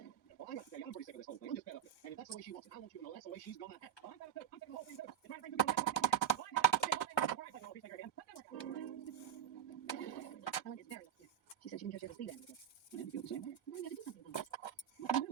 Well, I got to say, I'm pretty sick of this whole thing. I'm just fed up with it. And if that's the way she wants it, I want you to know that's the way she's gonna act. I'm fed up too. I'm sick of the whole thing too. You're trying to bring people back. Helen is very upset. She said she didn't just ever see that again. I didn't feel the same way. Well, you got to do something about it. What can you do?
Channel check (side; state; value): left; quieter; 10.7 dB